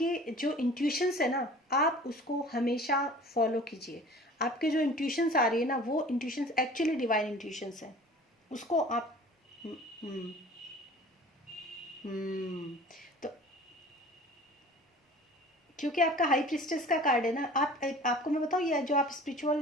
जो इंट्यूशंस है ना, आप उसको हमेशा फॉलो कीजिए। आपके जो इंट्यूशंस आ रही है ना, वो इंट्यूशंस एक्चुअली डिवाइन इंट्यूशंस हैं, उसको आप हम्म हम्म। तो क्योंकि आपका हाई प्रिस्टेस का कार्ड है ना, आपको मैं बताऊँ, ये जो आप स्पिरिचुअल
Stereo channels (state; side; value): normal; both; correlation 0.44